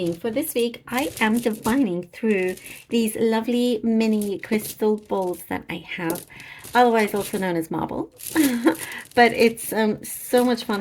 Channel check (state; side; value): identical; both; correlation 1.00